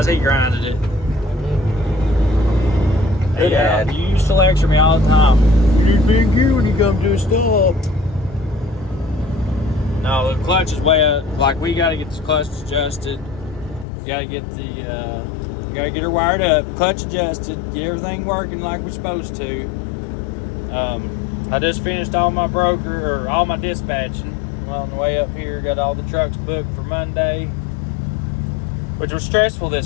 he grinded it. Hey, Dad. You used to lecture me all the time. You need to be in gear when you come to a stop. No, the clutch is way up. Like, we got to get the clutch adjusted. Got to get her wired up, clutch adjusted, get everything working like we're supposed to. I just finished all my all my dispatching. Well, on the way up here, got all the trucks booked for Monday, which was stressful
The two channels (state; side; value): drops out; right; at 13.9 s